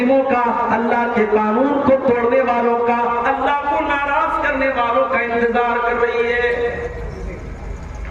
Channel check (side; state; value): both; identical; correlation 1.00